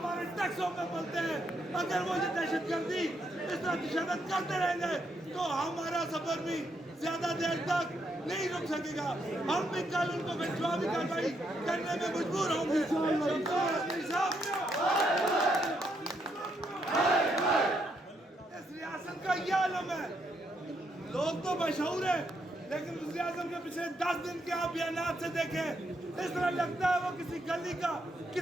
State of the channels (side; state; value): both; normal; correlation 0.77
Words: टैक्सों पे बोलते हैं। अगर वो ये दहशतगर्दी इस तरह तशद्दुद करते रहेंगे तो हमारा सफर भी ज्यादा देर तक नहीं रुक सकेगा। हम भी कल उनको जवाबी कार्रवाई करने में मजबूर होंगे। इस रियासत का यह आलम है, लोग तो मशहूर है लेकिन वज़ीर आज़म के पिछले 10 दिन के आप बयानात से देखें, इस तरह लगता है वो किसी गली का,